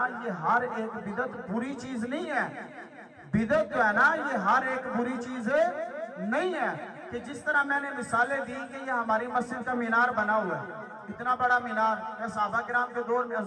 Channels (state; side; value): identical; both; correlation 1.00